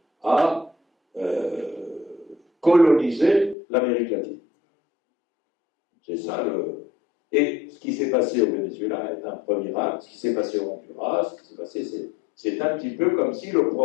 à coloniser l'Amérique latine. C'est ça le... Et ce qui s'est passé au Venezuela est un premier acte. Ce qui s'est passé au Honduras, ce qui s'est passé, c'est un petit peu comme si le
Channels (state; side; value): drops out; right; at 3.6 s